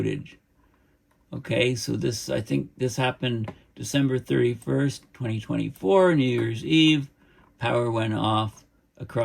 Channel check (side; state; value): both; identical; correlation 1.00